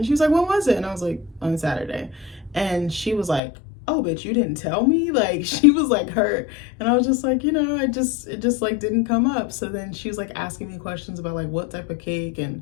she was like, when was it? And I was like, on Saturday. And she was like, oh, bitch, you didn't tell me? Like she was like hurt. And I was just like, it just like didn't come up. So then she was like asking me questions about like what type of cake and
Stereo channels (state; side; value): drops out; right; at 3.4 s